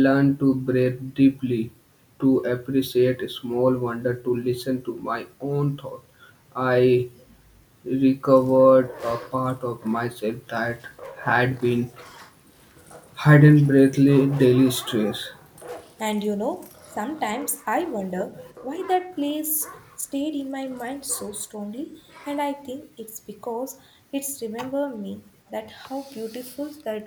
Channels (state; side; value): identical; both; correlation 1.00